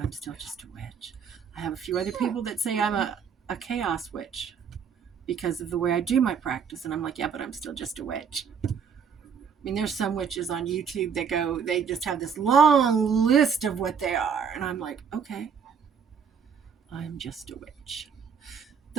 still just a witch. I have a few other people that say I'm a chaos witch because of the way I do my practice. And I'm like, yeah, but I'm still just a witch. I mean, there's some witches on YouTube that they just have this long list of what they are. And I'm like, okay. I'm just a witch.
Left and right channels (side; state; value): left; quieter; 6.7 dB